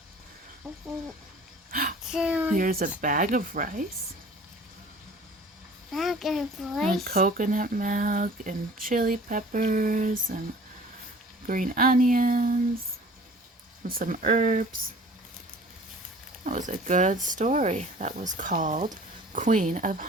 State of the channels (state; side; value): normal; both; correlation 0.47